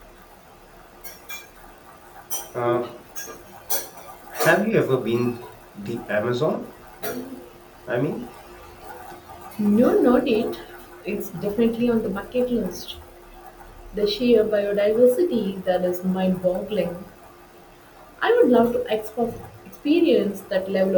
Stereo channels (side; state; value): both; identical; correlation 1.00